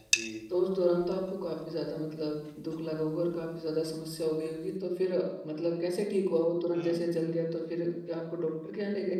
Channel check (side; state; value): both; identical; correlation 1.00